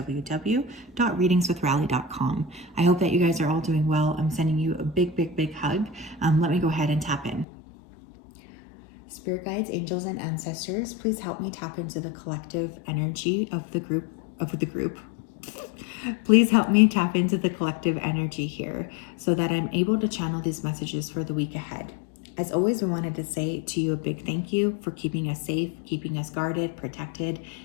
I hope that you guys are all doing well. I'm sending you a big hug. Let me go ahead and tap in. Spirit guides, angels, and ancestors, please help me tap into the collective energy of the group. Please help me tap into the collective energy here so that I'm able to channel these messages for the week ahead. As always, we wanted to say to you a big thank you for keeping us safe, keeping us guarded, protected,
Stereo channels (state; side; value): drops out; right; at 7.5 s